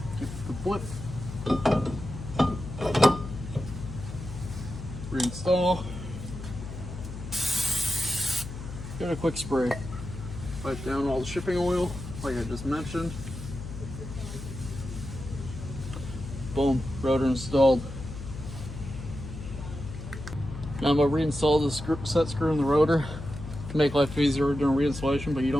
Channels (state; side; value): noise; left; hum, 10 dB below the sound